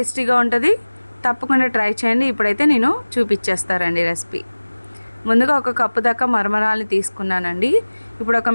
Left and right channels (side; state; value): both; inverted; correlation -1.00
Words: ఉంటుంది. తప్పకుండా ట్రై చేయండి. ఇప్పుడైతే నేను చూపించేస్తారండి రెసిపీ. ముందుగా ఒక కప్పు దాకా మరమరాలని తీసుకున్నానండి. ఇప్పుడు